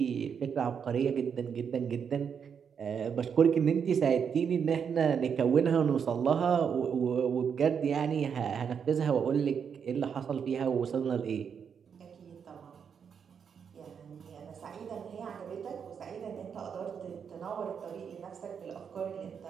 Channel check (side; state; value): left; quieter; 7.1 dB